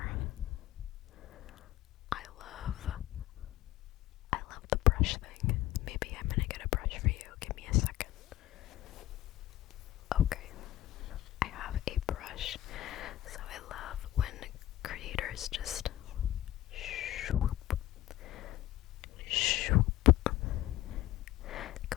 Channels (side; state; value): right; quieter; 14.7 dB